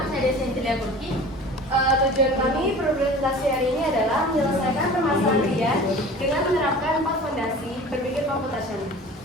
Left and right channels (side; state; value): both; normal; correlation 0.41